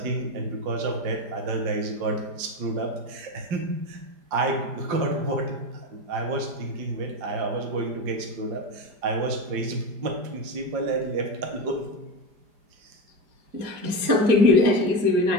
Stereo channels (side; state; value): left; late; 4.9 ms